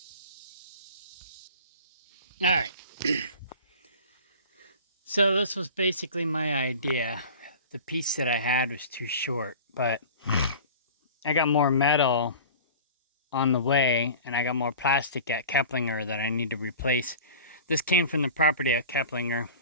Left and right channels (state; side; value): inverted; both; correlation -0.39